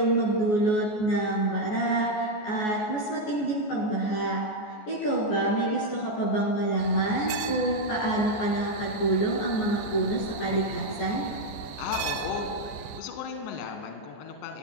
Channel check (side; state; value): right; late; 14 ms